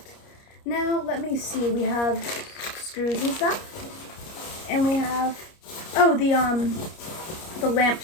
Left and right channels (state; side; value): late; right; 30 ms